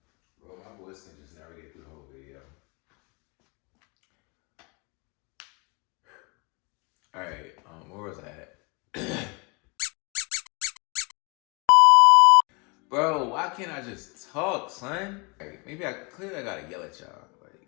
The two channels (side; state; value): right; quieter; 30.5 dB